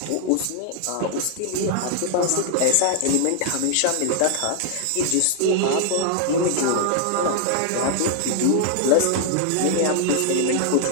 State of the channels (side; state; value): both; different; correlation -0.01